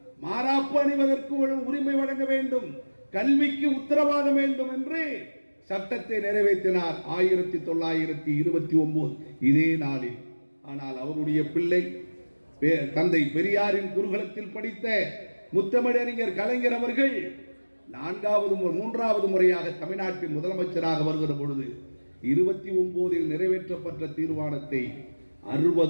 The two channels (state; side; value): inverted; both; correlation -1.00